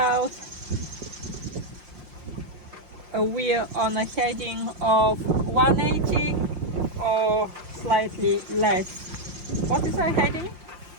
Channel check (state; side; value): late; left; 5.6 ms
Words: We're on a heading of 180 or slightly less. What is our heading?